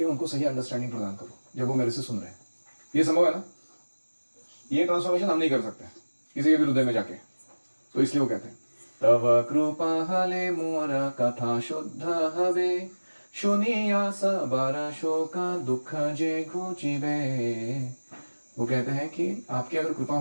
उनको सही अंडरस्टैंडिंग प्रदान करो जब वो मेरे से सुन रहे हैं। ये संभव है ना? ये ट्रांसफॉर्मेशन हम नहीं कर सकते किसी के भी हृदय में जाके। तो इसलिए वो कहते हैं, तव कृपा हले मोर कथा शुद्ध हवे, सुनिया सबर शोक दुख जे घुचिबे। वो कहते हैं कि आपकी अगर कृपा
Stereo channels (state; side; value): inverted; both; correlation -1.00